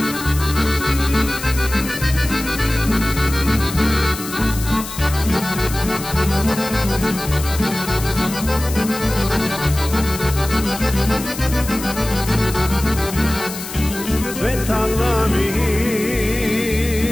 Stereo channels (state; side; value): noise; left; hiss, 10 dB below the sound